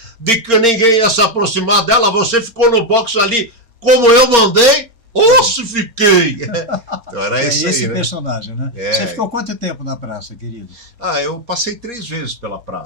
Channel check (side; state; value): left; late; 4.3 ms